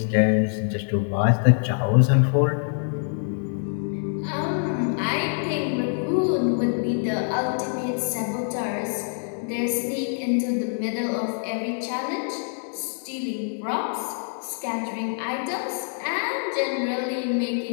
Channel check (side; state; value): right; silent; digital silence